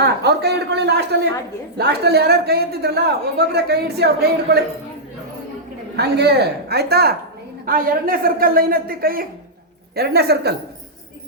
ಅವ್ರ ಕೈ ಹಿಡ್ಕೊಳ್ಳಿ. ಲಾಸ್ಟಲ್ಲಿ ಯಾರ್ಯಾರು ಕೈ ಎತ್ತಿದ್ರಲ್ಲ ಒಬ್ಬೊಬ್ಬರೇ ಕೈ ಇಡಿಸಿ ಅವ್ರ ಕೈ ಹಿಡ್ಕೊಳ್ಳಿ. ಹಂಗೆ ಆಯ್ತಾ? 2ನೇ ಸರ್ಕಲ್ ಲೈನ್ ಎತ್ತಿ ಕೈ. 2ನೇ ಸರ್ಕಲ್.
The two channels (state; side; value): normal; both; correlation -0.11